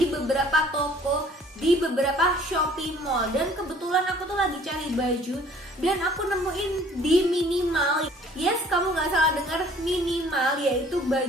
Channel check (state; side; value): normal; both; correlation 0.55